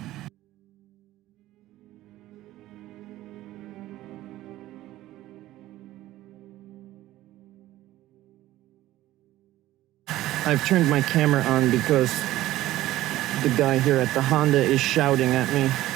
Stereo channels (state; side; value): quieter; left; 15.4 dB